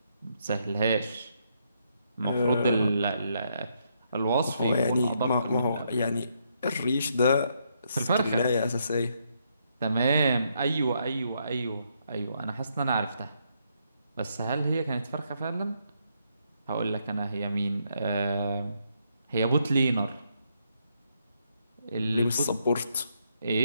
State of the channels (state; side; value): inverted; both; correlation -0.76